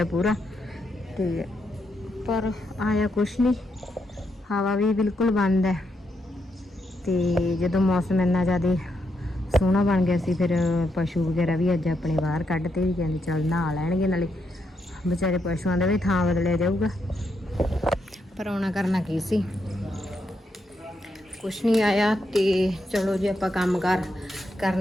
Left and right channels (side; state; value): both; normal; correlation 0.80